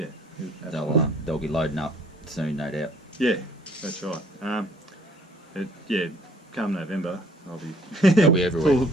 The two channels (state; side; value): normal; both; correlation 0.59